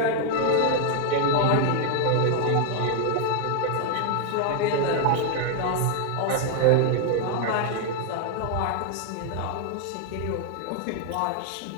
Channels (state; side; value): different; both; correlation 0.00